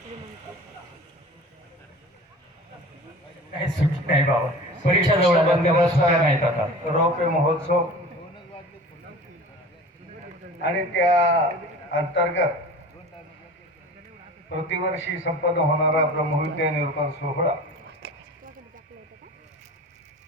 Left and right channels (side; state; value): both; normal; correlation 0.39